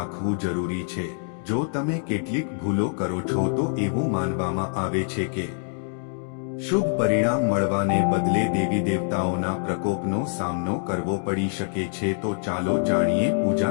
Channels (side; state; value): right; silent; 62 dB below the other